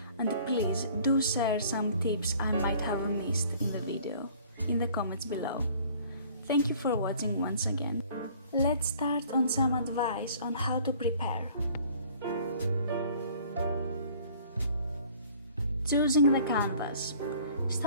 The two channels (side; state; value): both; inverted; correlation -0.53